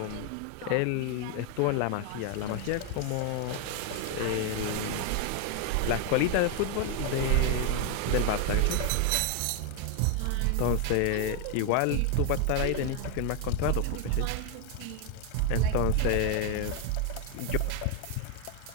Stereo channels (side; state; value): both; different; correlation 0.01